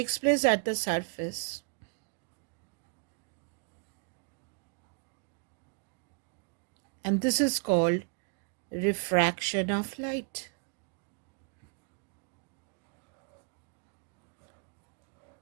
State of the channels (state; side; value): quieter; left; 40.0 dB